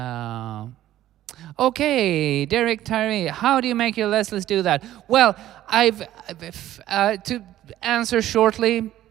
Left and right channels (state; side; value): quieter; left; 13.4 dB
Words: Okay, Derek Tyree, how do you make your Leslies do that? Well, to answer shortly,